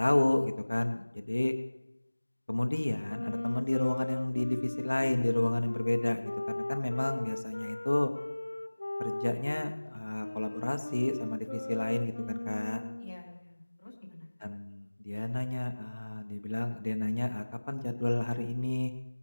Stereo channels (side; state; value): both; inverted; correlation -1.00